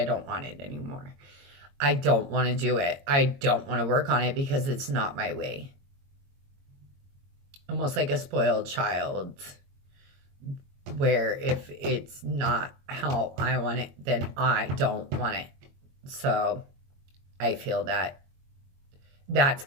don't want it anymore. I don't want to do it. I don't want to work on it because it's not my way. Almost like a spoiled child, where if it's not how I want it, then I don't want it. So I feel that that's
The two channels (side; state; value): left; late; 22 ms